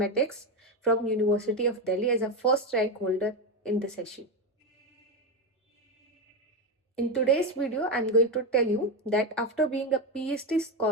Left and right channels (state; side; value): normal; both; correlation 0.12